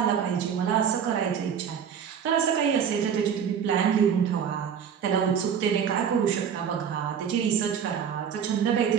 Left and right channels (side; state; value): left; quieter; 7.8 dB